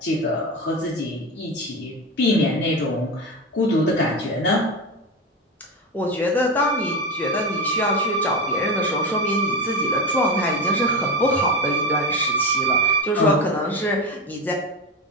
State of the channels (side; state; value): both; normal; correlation 0.20